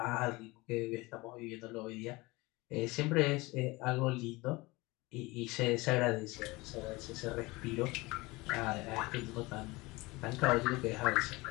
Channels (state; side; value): quieter; right; 22.7 dB